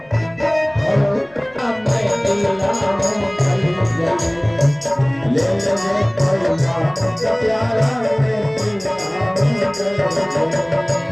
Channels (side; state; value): left; noise; rumble, 30 dB below the sound